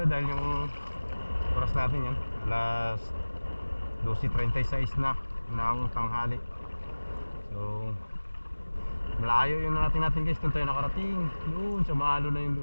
dahil yung oras natin yan alas 12:36 na ng tanghali. So malayo yung natin guys kung tayo nakarating. Doon sa maalo na yun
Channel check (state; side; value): inverted; both; correlation -1.00